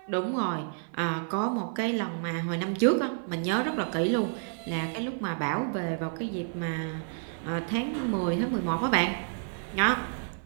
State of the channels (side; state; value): left; silent; 58 dB below the other